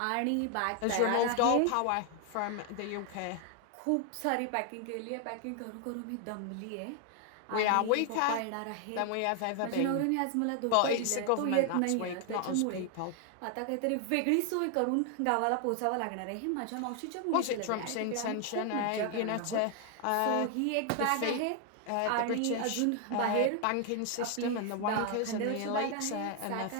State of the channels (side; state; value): both; different; correlation 0.00